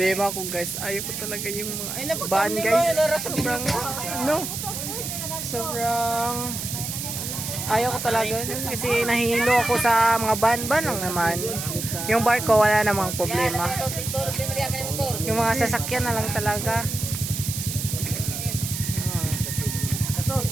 ko guys, ayaw ko talaga yung mga van guys. Sobrang, ano? Sobrang ayaw ko talaga kasi nahihilo ako sa mga van lang naman. Yung barko wala namang problema. Yung mga sasakyan na lang talaga.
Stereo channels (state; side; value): noise; right; hiss, 5 dB below the sound